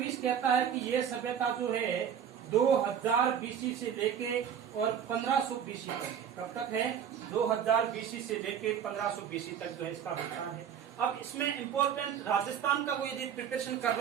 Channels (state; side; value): quieter; left; 8.5 dB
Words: कहता है कि ये सभ्यता जो है 2000 बीसी से लेके और 1500 बीसी तक। कब तक है? 2000 बीसी से लेके 1500 बीसी तक जो है इसका विस्तार है। अब इसमें इम्पोर्टेंट राजस्थान का कोई यदि प्रिपरेशन कर